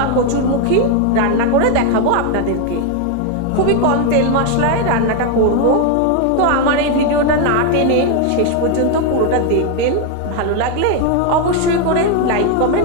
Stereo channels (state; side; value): different; both; correlation 0.01